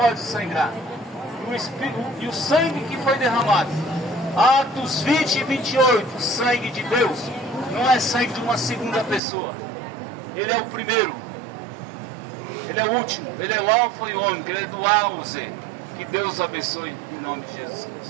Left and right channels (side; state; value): left; drops out; at 9.2 s